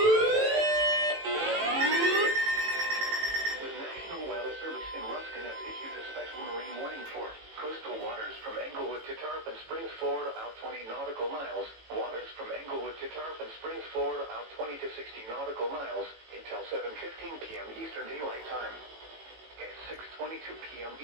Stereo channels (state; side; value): late; left; 18 ms